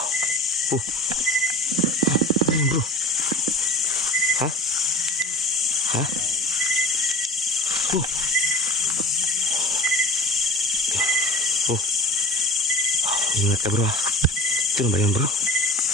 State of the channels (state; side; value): normal; both; correlation 0.37